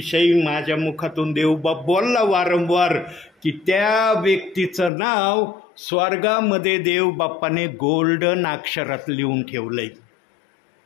माझ्या मुखातून देवबाप बोलला वारंवार की त्या व्यक्तीचं नाव स्वर्गामध्ये देवबाप्पाने गोल्डन अक्षरात लिहून ठेवलंय.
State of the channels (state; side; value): drops out; right; at 4.9 s